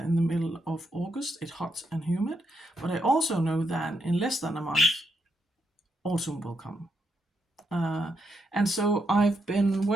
the middle of August. It's hot and humid, but I also know that in less than a month, autumn will come. And so I've been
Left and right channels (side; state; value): both; normal; correlation 0.80